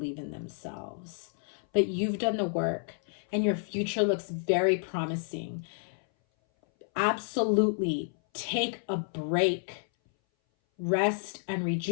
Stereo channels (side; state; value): right; silent; 58 dB below the other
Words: in themselves. But you've done the work and your future looks very promising. Absolutely take a break, rest and